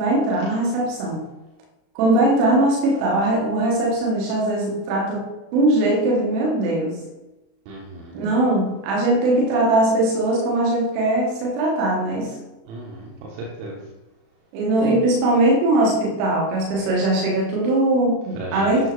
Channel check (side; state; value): left; late; 36 ms